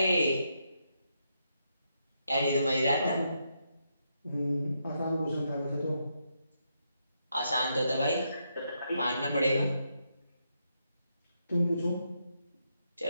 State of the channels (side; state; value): both; inverted; correlation -0.80